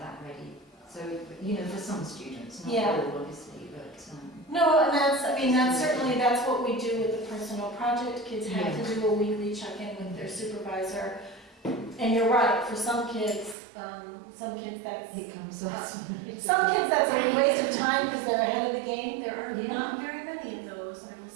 ready. So for some students, not Yeah. all, obviously, but No, and that's what we do with the personal project. Kids have to do a weekly check-in with their supervisor. And you're right, for some kids that's, it comes us. some kids that's a waste of time because they're ahead of the game. There are Yeah. not very many of those, I will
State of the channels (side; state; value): left; drops out; at 13.6 s